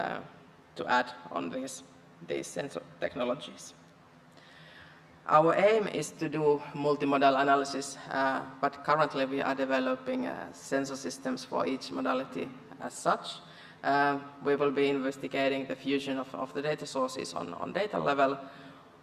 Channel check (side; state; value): both; identical; correlation 1.00